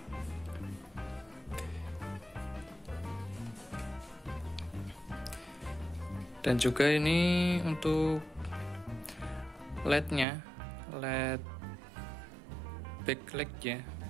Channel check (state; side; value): drops out; left; at 10.2 s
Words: Dan juga ini untuk LED-nya, LED backlight ya.